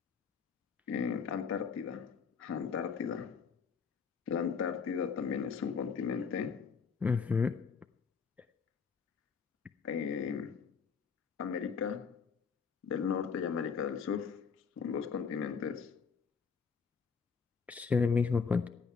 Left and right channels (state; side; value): quieter; right; 5.8 dB